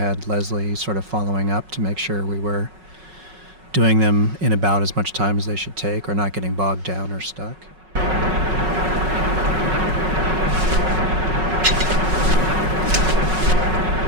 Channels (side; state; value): left; late; 5.4 ms